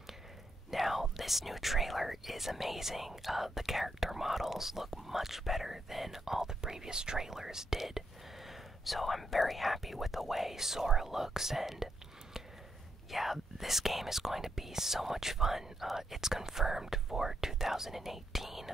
Now, this new trailer is amazing. The character models look much better than all the previous trailers did. So I'm very happy with the way Sora looks, and yeah, this game is going to be so much fun. It's confirmed for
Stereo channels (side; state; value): both; normal; correlation 0.81